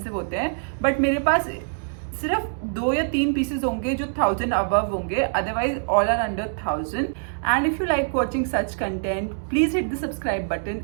होते हैं, बट मेरे पास सिर्फ 2 या 3 पीसेज होंगे जो 1000 अबव होंगे, otherwise all are under 1000। And if you like watching such content, please hit the subscribe button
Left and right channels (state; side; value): silent; left; digital silence